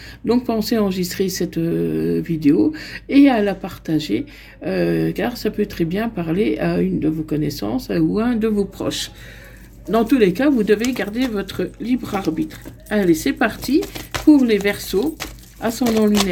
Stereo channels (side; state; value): both; identical; correlation 1.00